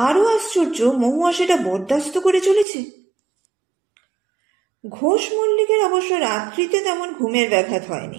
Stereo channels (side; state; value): left; drops out; at 2.7 s